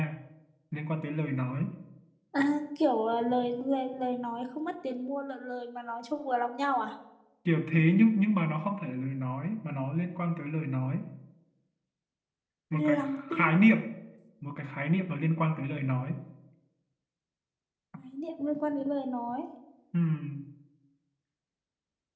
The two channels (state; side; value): identical; both; correlation 1.00